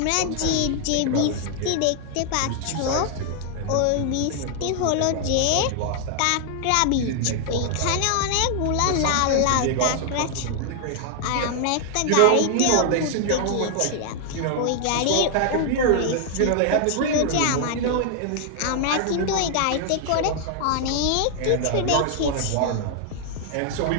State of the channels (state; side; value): different; both; correlation 0.00